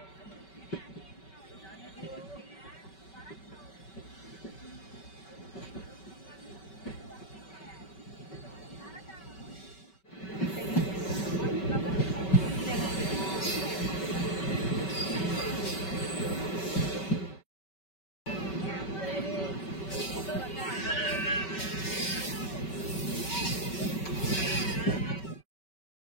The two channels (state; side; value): late; right; 5.3 ms